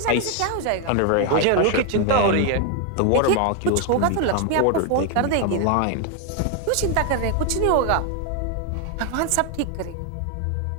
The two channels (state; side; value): different; both; correlation 0.01